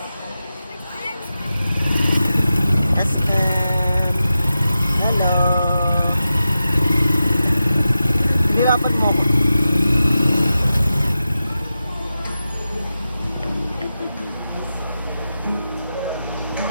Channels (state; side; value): inverted; both; correlation -0.92